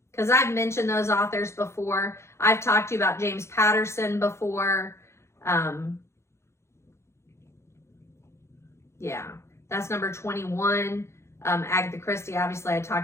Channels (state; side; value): late; right; 0.13 ms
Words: because I've mentioned those authors before. I've talked to you about James Patterson before. Yeah, that's number 21. Agatha Christie, obviously I